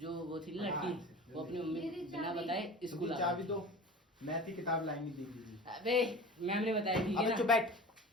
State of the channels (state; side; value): normal; both; correlation 0.37